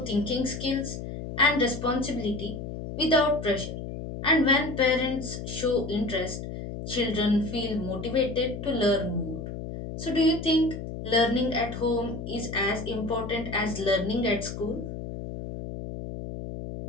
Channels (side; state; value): left; noise; hum, 8 dB below the sound